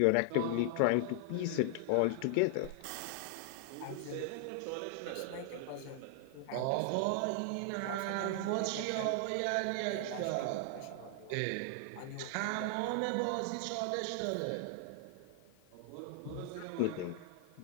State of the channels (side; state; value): both; different; correlation 0.00